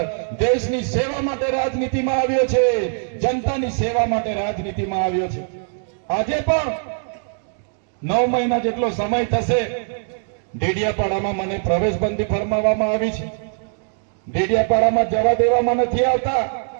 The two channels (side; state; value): left; silent; digital silence